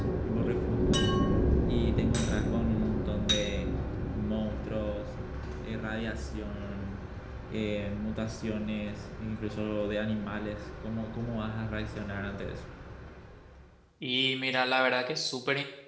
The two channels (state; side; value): identical; both; correlation 1.00